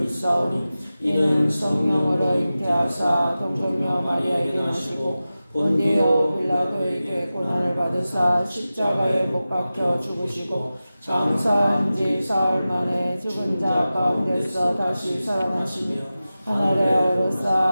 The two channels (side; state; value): both; inverted; correlation -0.95